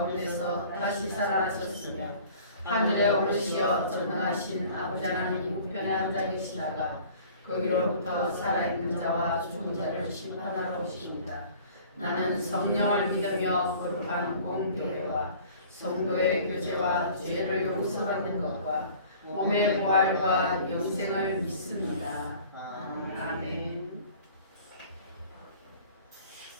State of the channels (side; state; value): both; inverted; correlation -0.49